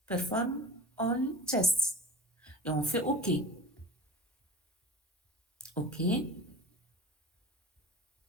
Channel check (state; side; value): normal; both; correlation 0.37